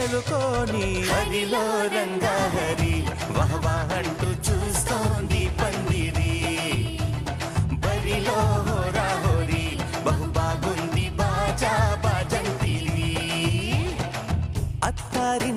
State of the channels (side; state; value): both; identical; correlation 1.00